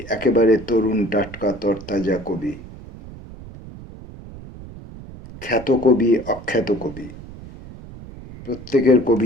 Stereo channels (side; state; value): right; noise; rumble, 15 dB below the sound